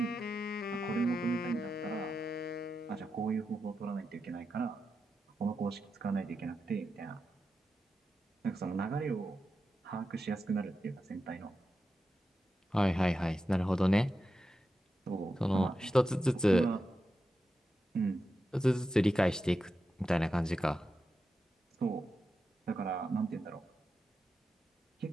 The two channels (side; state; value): both; normal; correlation 0.89